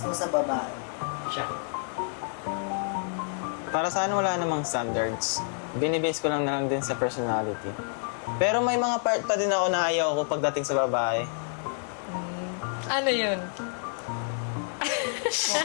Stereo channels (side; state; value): right; silent; 59 dB below the other